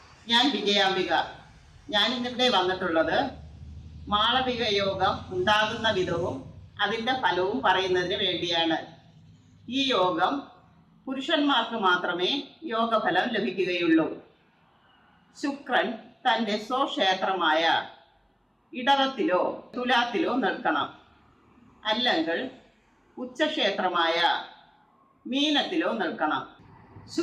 ഞാൻ വിജയാംബിക. ഞാൻ ഇന്നിവിടെ വന്നിട്ടുള്ളത് മാളവിക യോഗം ഉണ്ടാകുന്ന വിധവും അതിൻ്റെ ഫലവും പറയുന്നതിന് വേണ്ടിയാണ്. ഈ യോഗം പുരുഷന്മാർക്ക് മാത്രമേ യോഗഫലം ലഭിക്കുകയുള്ളൂ. ശുക്രൻ തൻ്റെ സ്വക്ഷേത്രമായ ഇടവത്തിലോ തുലാത്തിലോ നിൽക്കണം, അല്ലെങ്കിൽ ഉച്ചക്ഷേത്രമായ മീനത്തിലോ നിൽക്കണം.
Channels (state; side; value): identical; both; correlation 1.00